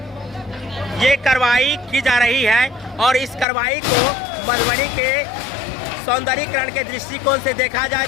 ये कार्रवाई की जा रही है और इस कार्रवाई को मधुबनी के सौंदर्यीकरण के दृष्टिकोण से देखा जाए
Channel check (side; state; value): right; drops out; at 3.5 s